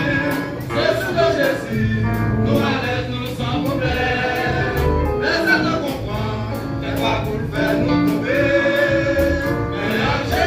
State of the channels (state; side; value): identical; both; correlation 1.00